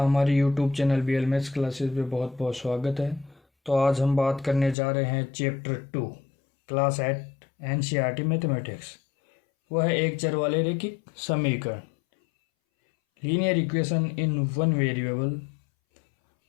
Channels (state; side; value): drops out; right; at 4.8 s